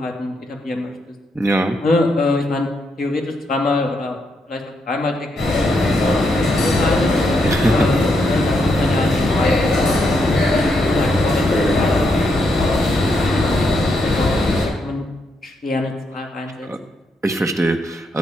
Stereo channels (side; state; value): both; normal; correlation 0.79